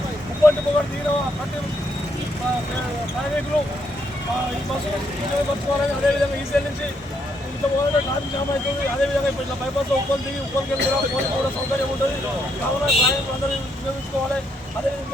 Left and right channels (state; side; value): normal; both; correlation 0.75